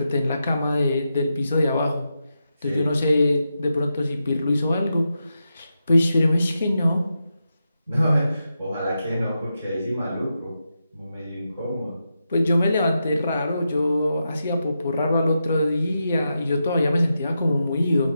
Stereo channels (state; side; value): inverted; both; correlation -0.87